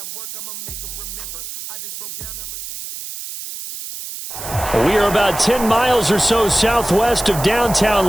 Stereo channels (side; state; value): right; noise; hiss, 9 dB below the sound